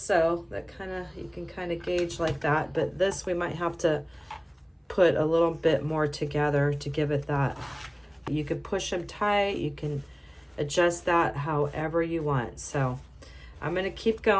that you can kind of gauge like that, but this we might have to put a little bit more together to give it that. You can push them tight, you can adjust that however you want. So I'm going to keep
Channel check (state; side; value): identical; both; correlation 1.00